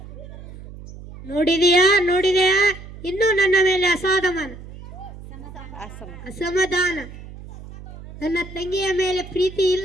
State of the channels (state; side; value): noise; right; hum, 15 dB below the sound